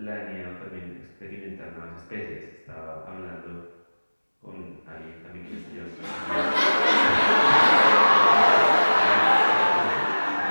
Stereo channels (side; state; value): both; inverted; correlation -1.00